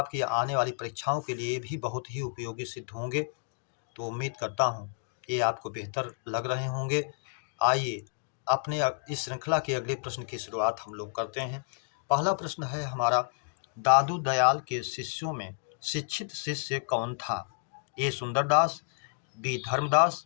आने वाली परीक्षाओं के लिए भी बहुत ही उपयोगी सिद्ध होंगे। तो उम्मीद करता हूँ ये आपको बेहतर लग रहे होंगे। आइए अपने इस श्रृंखला के अगले प्रश्न की शुरुआत हम लोग करते हैं। पहला प्रश्न है हमारा, दादू दयाल के शिष्यों में शिक्षित शिष्य कौन था? ए सुंदरदास, बी धर्मदास,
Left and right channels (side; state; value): right; silent; digital silence